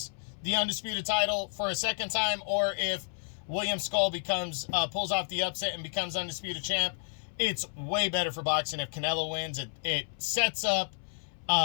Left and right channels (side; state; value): right; silent; 57 dB below the other